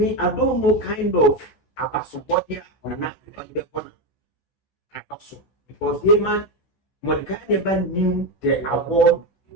I don't know kind of Abasobodia or not on the corner. Also, because Haman, Mordecai never knew the award he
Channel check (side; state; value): right; late; 14 ms